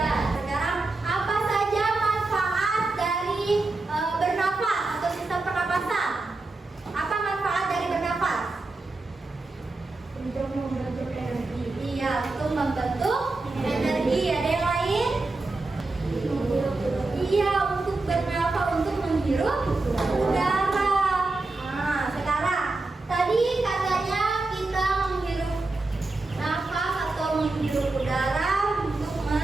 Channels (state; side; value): quieter; left; 3.3 dB